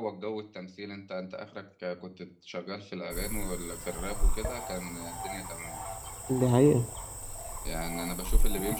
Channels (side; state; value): both; identical; correlation 1.00